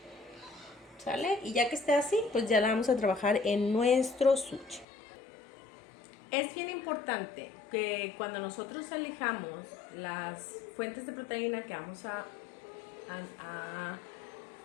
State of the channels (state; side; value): drops out; right; at 4.9 s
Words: ¿Sale? Y ya que esté así, pues ya la vamos a trabajar en nuestro sushi. Es bien importante que cuando nosotros elijamos las fuentes de proteína que vamos a